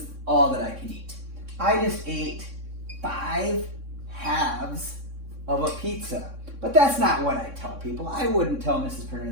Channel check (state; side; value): late; left; 3.6 ms